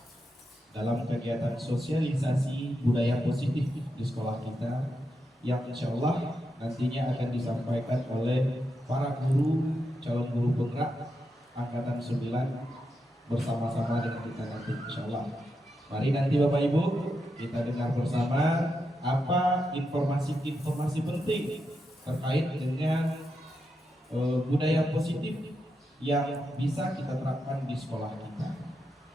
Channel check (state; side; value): normal; both; correlation 0.85